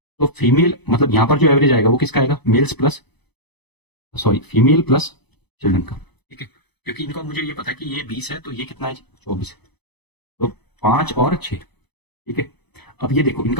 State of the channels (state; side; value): late; right; 0.98 ms